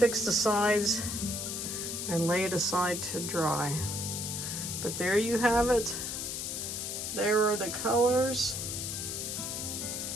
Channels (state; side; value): noise; left; hiss, 4 dB below the sound